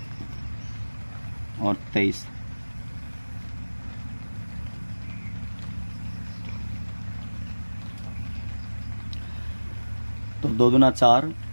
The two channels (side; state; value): both; inverted; correlation -1.00